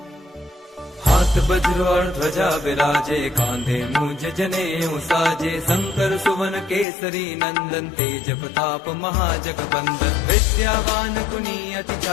हाथ वज्र और ध्वजा विराजे, कांधे मूंज जनेऊ साजे। शंकर सुवन केसरी नंदन, तेज प्रताप महाजगबंदन। विद्यावान गुणी अति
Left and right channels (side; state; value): right; drops out; at 6.9 s